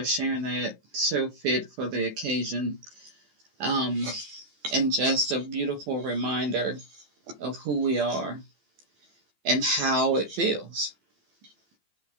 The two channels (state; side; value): late; left; 12 ms